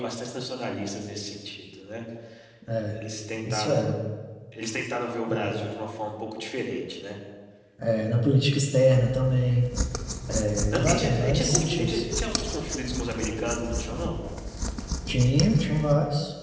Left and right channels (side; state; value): both; identical; correlation 1.00